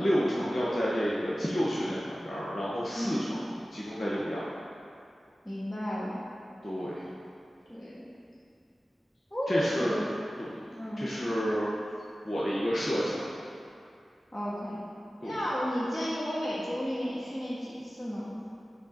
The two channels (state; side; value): normal; both; correlation 0.96